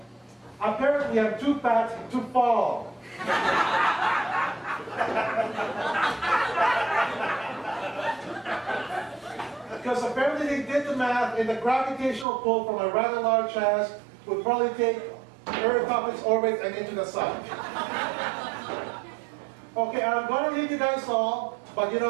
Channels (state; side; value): drops out; left; at 12.2 s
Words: apparently I'm too fat to fall. Because apparently they did the math, and the gravitational pull from a rather large ass would probably take Earth off its orbit and into the sun. Okay, I'm going to leave you guys all, but you